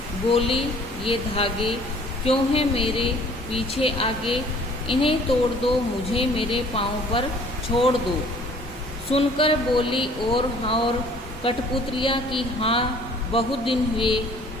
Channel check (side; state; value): both; normal; correlation 0.54